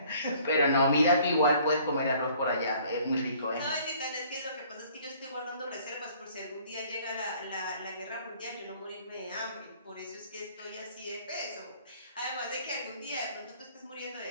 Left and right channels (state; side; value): inverted; both; correlation -0.56